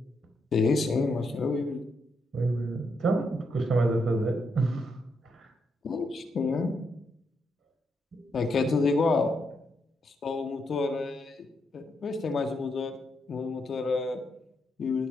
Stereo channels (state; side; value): normal; both; correlation 0.80